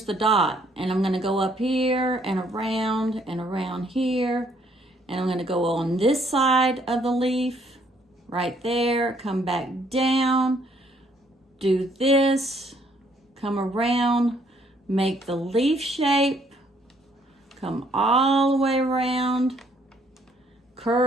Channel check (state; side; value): normal; both; correlation 0.66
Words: the dot, and I'm going to go up here and around here, and I'm going to go on this side of the leaf right there, come back down, do this, come around, make the leaf shape, come all the way around,